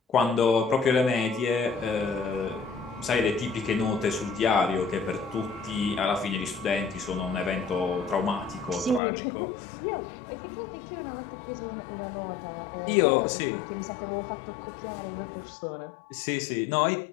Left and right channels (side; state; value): right; drops out; at 9.0 s